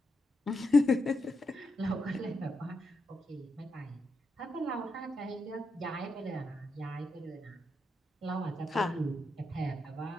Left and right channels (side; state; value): both; normal; correlation 0.84